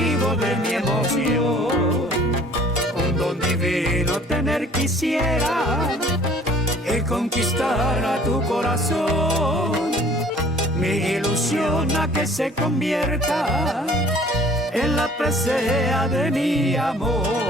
de mi emoción. Un don divino tener quisiera, el conquistar a tu corazón. Mi ilusión a que se convierta en la presea de mi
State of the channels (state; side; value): normal; both; correlation 0.52